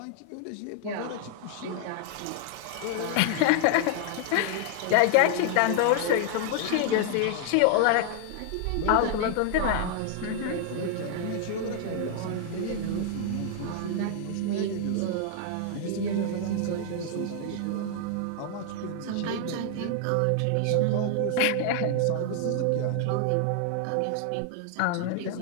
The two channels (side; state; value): both; different; correlation 0.00